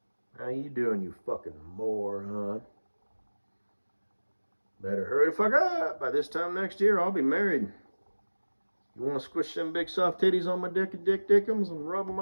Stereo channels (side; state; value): both; inverted; correlation -1.00